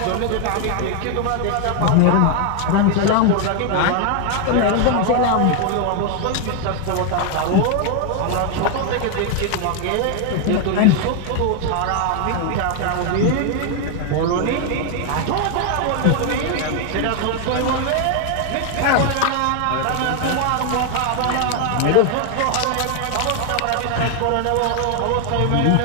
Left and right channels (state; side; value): different; both; correlation 0.00